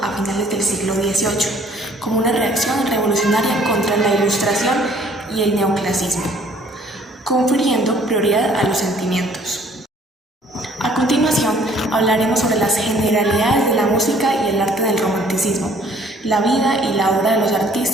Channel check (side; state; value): both; normal; correlation 0.58